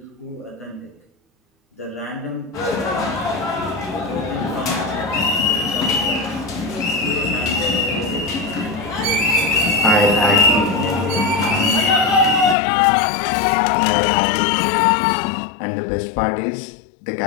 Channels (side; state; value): right; drops out; at 12.6 s